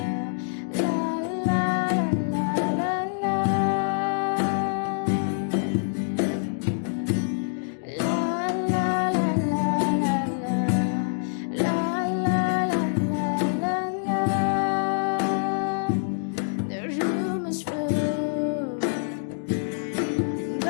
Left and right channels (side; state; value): right; silent; digital silence